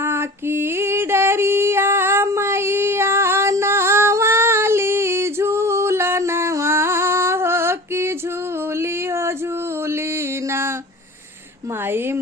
की डरिया मैया नवाली झूलनवा हो कि झूली हो झूली ना। माई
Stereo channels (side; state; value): both; normal; correlation 0.37